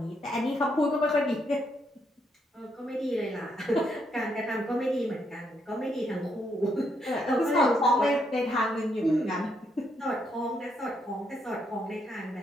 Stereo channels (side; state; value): both; normal; correlation 0.76